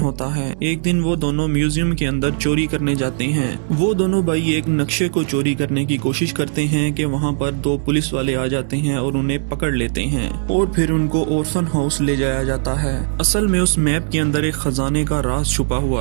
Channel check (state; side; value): silent; left; digital silence